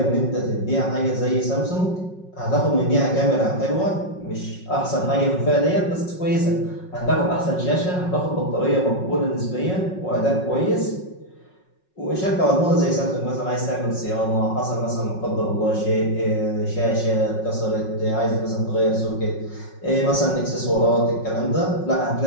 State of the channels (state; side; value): late; right; 5.4 ms